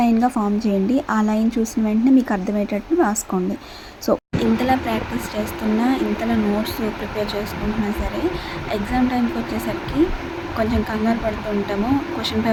ఫామ్ చేయండి. ఆ లైన్ చూసిన వెంటనే మీకు అర్థమయ్యేటట్టు రాసుకోండి. సో ఇంతలా ప్రాక్టీస్ చేస్తున్నా, ఇంతలా నోట్స్ ప్రిపేర్ చేసుకుంటున్నా సరే, ఎగ్జామ్ టైంకి వచ్చేసరికి కొంచెం కంగారు పడుతూ ఉంటాము. క్వశ్చన్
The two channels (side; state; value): both; identical; correlation 1.00